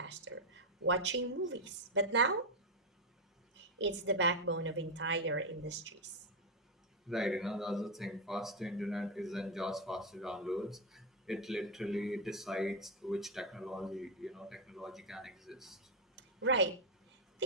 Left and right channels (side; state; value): both; normal; correlation 0.04